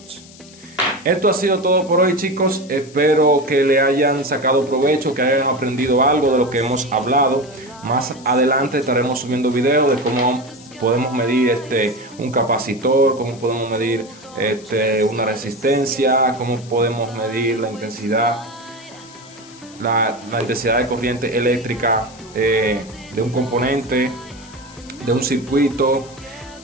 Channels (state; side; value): noise; left; hiss, 22 dB below the sound